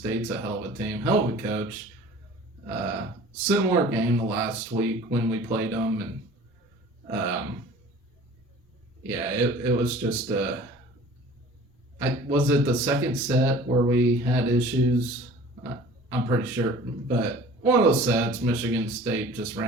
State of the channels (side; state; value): both; normal; correlation 0.45